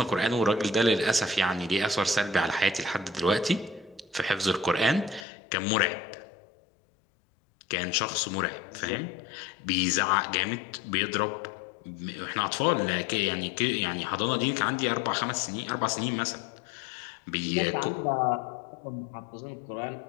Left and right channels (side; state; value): right; drops out; at 5.2 s